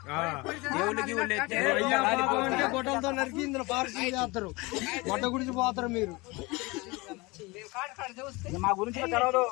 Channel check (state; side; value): quieter; right; 24.4 dB